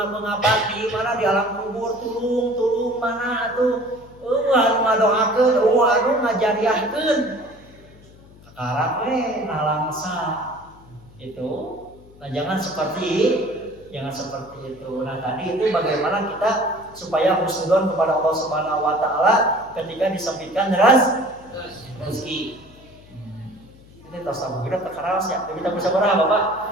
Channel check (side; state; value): left; noise; hum, 23 dB below the sound